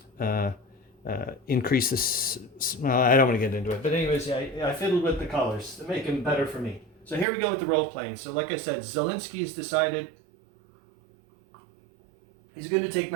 increase this. Well, I don't want to get into it, but anyways, yeah, I fiddled with the colors to make them better for me. So here we go with the role playing. So like I said, Zhilinski's decided he's going to take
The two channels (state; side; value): drops out; left; at 7.2 s